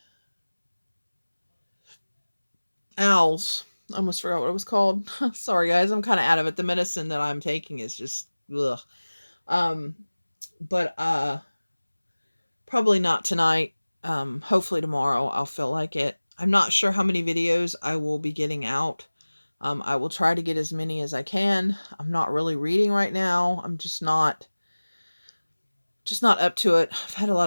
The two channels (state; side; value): inverted; both; correlation -1.00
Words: owls. I almost forgot what it was called. Sorry, guys. I'm kind of out of it. The medicine that I'm taking is just ugh. Um, but probably not tonight. Hopefully tomorrow I'll feel like it. I'm not sure how many videos I will be getting out. I will try to get as many as I can. I'm not really reading right now. I'm just not up to it. I've had a